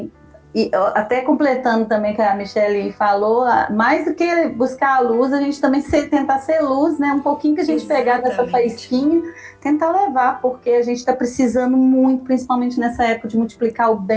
e até completando também que a Michelle falou, mais do que buscar a luz, a gente também tentar ser luz, né? Um pouquinho que a gente pegar dessa faísquinha, tentar levar, porque a gente está precisando muito, principalmente nessa época, de multiplicar o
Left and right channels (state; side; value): identical; both; correlation 1.00